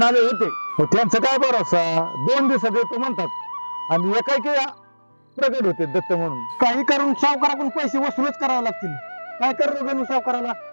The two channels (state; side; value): inverted; both; correlation -1.00